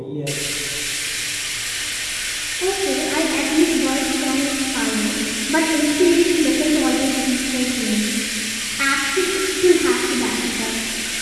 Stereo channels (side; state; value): both; identical; correlation 1.00